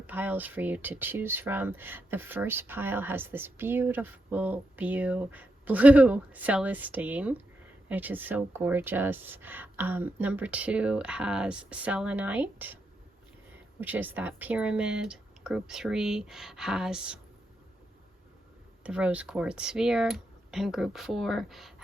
for you to choose from. The first pile has this beautiful blue Celestine, which is so gorgeous. Number 2 has selenite, which is that pyramid. Group 3 has the rose quartz sphere, and group 4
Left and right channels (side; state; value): both; normal; correlation 0.84